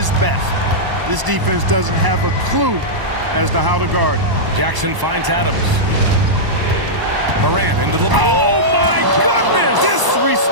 best. This defense doesn't have a clue as to how to guard it. Jackson finds Adams. Morant into the... Oh, my goodness!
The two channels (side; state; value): left; late; 1.0 ms